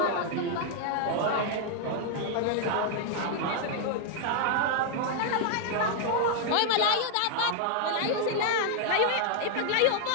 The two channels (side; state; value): both; different; correlation 0.00